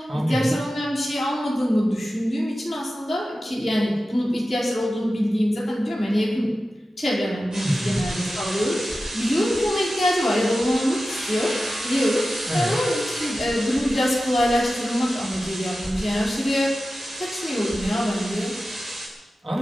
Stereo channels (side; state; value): both; normal; correlation 0.94